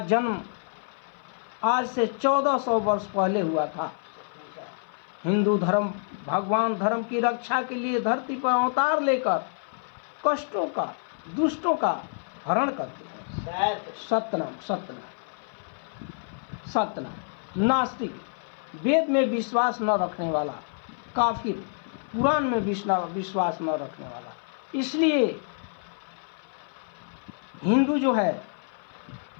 जन्म आज से 1400 वर्ष पहले हुआ था। हिंदू धर्म भगवान धर्म की रक्षा के लिए धरती पर अवतार लेकर कष्टों का, दुष्टों का हरण करते हैं। सत्यनाम, सत्यनाम, सत्यनाम। नास्तिक, वेद में विश्वास न रखने वाला, काफिर, कुरान में विश्वास न रखने वाला। इसलिए हिंदू जो है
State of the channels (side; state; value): right; silent; 56 dB below the other